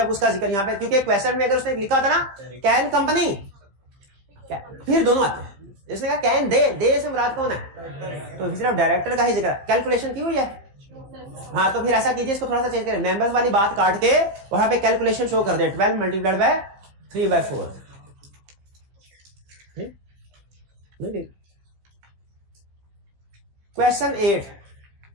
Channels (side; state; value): left; late; 15 ms